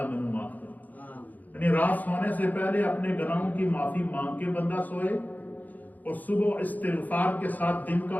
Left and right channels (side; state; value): right; late; 0.081 ms